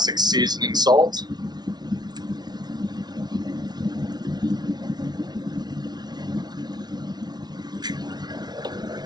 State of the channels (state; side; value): late; left; 0.19 ms